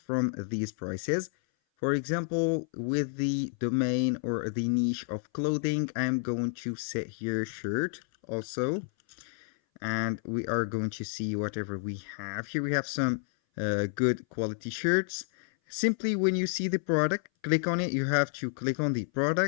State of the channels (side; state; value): right; silent; 57 dB below the other